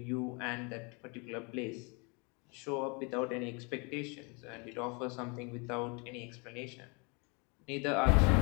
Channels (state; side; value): quieter; right; 31.8 dB